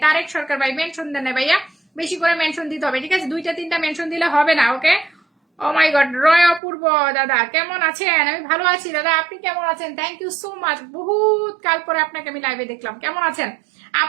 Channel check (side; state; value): left; drops out; at 6.6 s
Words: তারেক সরকার ভাই, মেনশন দেন না ভাইয়া, বেশি করে মেনশন দিতে হবে, ঠিক আছে? 2-3টা মেনশন দিলে হবে না, ওকে। ও মাই গড। রয় অপূর্ব দাদা কেমন আছেন? আমি ভালো আছি দাদা, আপনি কেমন আছেন? থ্যাংক ইউ সো মাচ, বহুত কাল পরে আপনাকে আমি লাইভে দেখলাম, কেমন আছেন